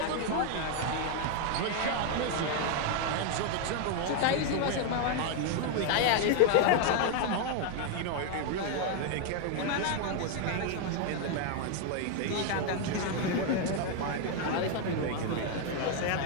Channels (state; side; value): different; both; correlation 0.01